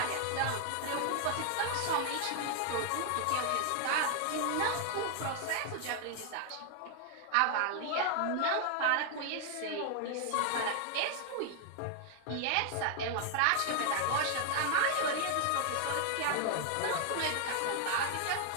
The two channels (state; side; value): different; both; correlation 0.00